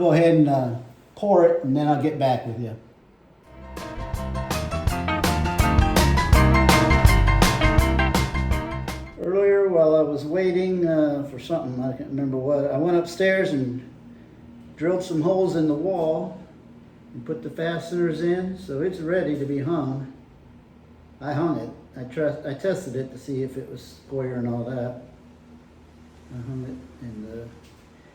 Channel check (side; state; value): both; identical; correlation 1.00